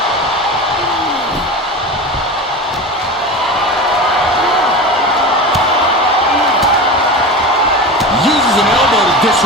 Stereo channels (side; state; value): both; normal; correlation 0.28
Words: Uses an elbow to